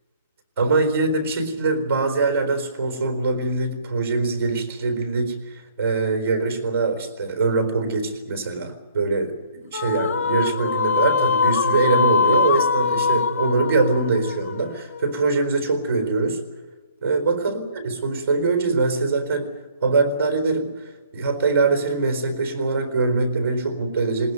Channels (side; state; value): both; inverted; correlation -0.58